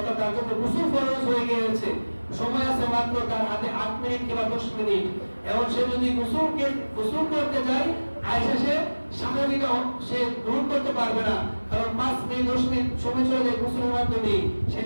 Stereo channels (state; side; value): inverted; both; correlation -1.00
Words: তার জন্য গোসল ফরজ হয়ে গিয়েছে, সময় আছে মাত্র তার হাতে 8 মিনিট কিংবা 10 মিনিট, এবং সে যদি গোসল করতে যায় আয়সা সে স্বাভাবিক সে গ্রহণ করতে পারবে না, কারণ 5 মিনিট 10 মিনিট সময় চলে যায় গোসলের মাধ্যমে। সেই